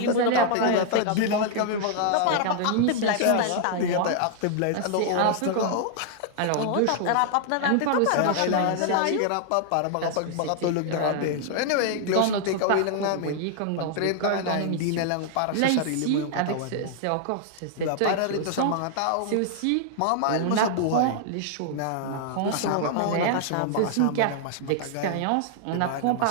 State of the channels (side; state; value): both; different; correlation -0.01